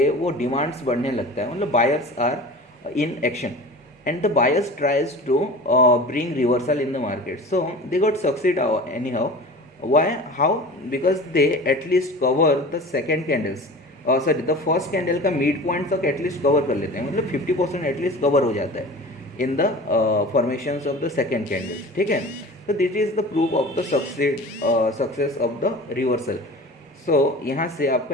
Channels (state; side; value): normal; both; correlation 0.37